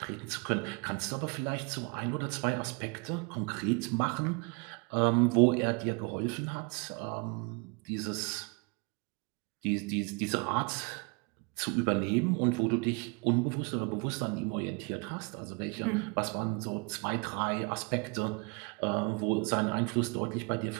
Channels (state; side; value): quieter; left; 32.0 dB